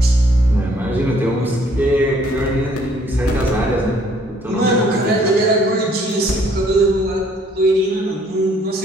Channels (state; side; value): normal; both; correlation 0.62